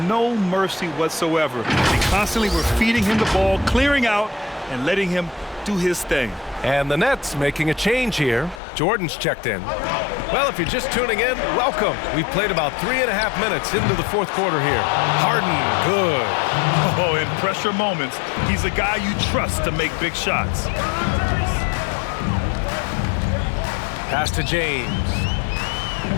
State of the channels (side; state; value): right; drops out; at 8.6 s